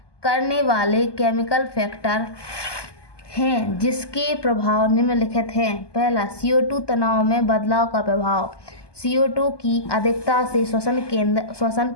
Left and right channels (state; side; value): late; right; 1.2 ms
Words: करने वाले केमिकल फैक्टर हैं जिसके प्रभाव निम्नलिखित हैं। पहला, CO2 तनाव में बदलाव का प्रभाव। CO2 की अधिकता से श्वसन